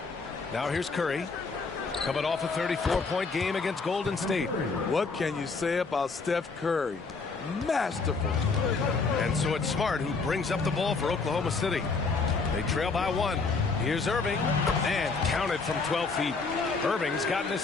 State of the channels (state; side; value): quieter; right; 4.3 dB